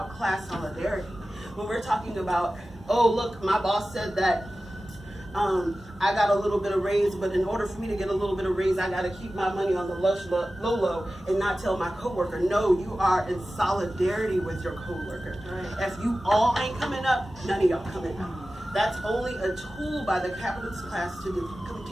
class solidarity, when we're talking about, oh, look, my boss said that I got a little bit of raise, but in order for me to get a little bit of raise, I got to keep my money on the low and not tell my coworker. No, you are in solidarity with your coworker. Right. If you all ain't coming up, none of y'all coming up. That's only a tool by the capitalist class to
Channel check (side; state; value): both; normal; correlation 0.95